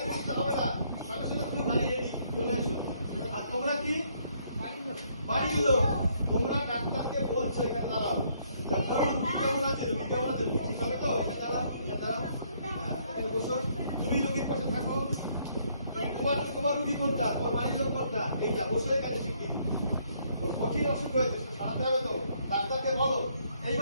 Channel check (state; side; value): inverted; both; correlation -0.68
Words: করতে হবে না, সঙ্গে সঙ্গে তুমি গাড়ি রেডি চলে এসো। আর তোমরা কি বাড়ির লোক, তোমরা ডাক্তারকে বলছো এখানে দাঁড়াও, ডাক্তার রুগী কেমন আছে, রুগী কেমন আছে, ঠিক হবে তো, এখানে দাঁড়াও, এখানে দাঁড়াও, এখানে বসো, তুমি রুগীর পাশে থাকো। তোমার রুগী কোনটা, তোমার বাড়ির লোক কোনটা, এইটা বসো এখানে শিখি। ওর কঠিন অসুখ হয়েছে, সারাতে হবে তো, ডাক্তারকে বলো।